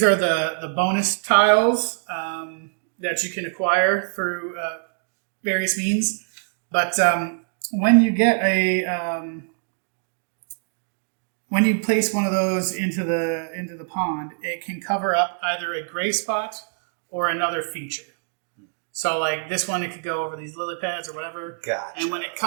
are the bonus tiles that you can acquire through various means. But when you get when you place one of those into the pond, it can cover up either a gray spot or another feature. So like this one, it could go over these lily pads or whatever. Gotcha. And when it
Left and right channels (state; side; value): silent; left; digital silence